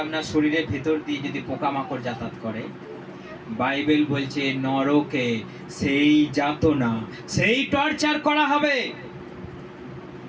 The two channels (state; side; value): identical; both; correlation 1.00